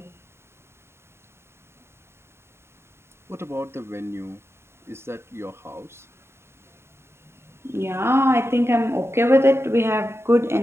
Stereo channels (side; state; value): left; late; 0.12 ms